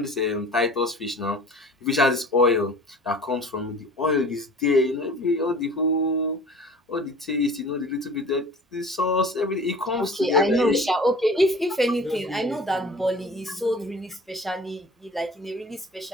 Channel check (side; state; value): both; normal; correlation 0.44